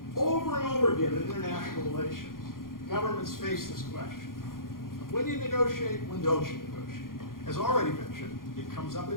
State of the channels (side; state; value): right; late; 0.91 ms